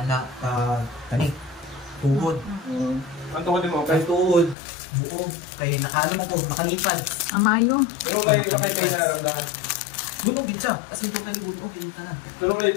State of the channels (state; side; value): drops out; right; at 4.5 s